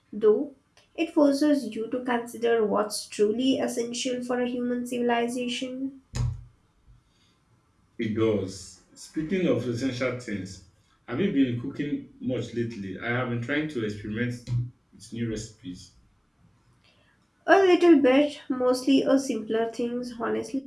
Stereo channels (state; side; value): identical; both; correlation 1.00